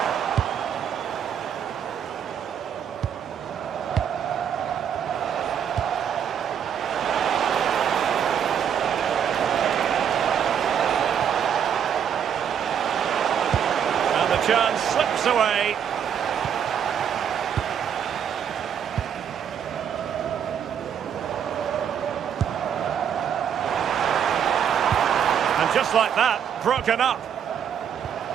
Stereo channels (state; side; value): quieter; left; 8.4 dB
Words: And the chance slips away. Just like that, broken up.